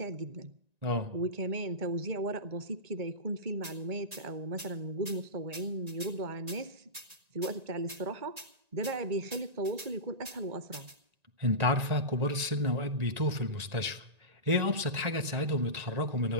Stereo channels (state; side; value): late; left; 1.9 ms